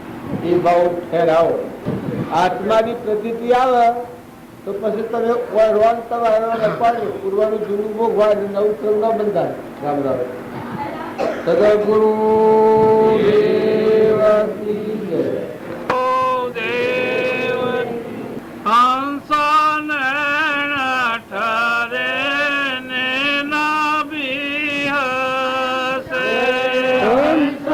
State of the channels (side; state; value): both; identical; correlation 1.00